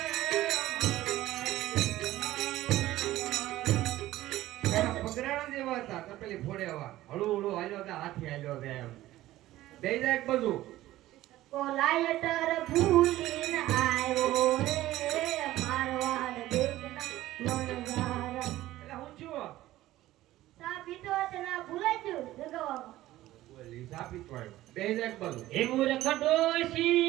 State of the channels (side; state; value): left; quieter; 15.5 dB